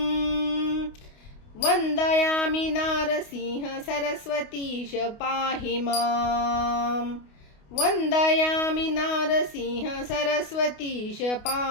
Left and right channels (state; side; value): late; right; 28 ms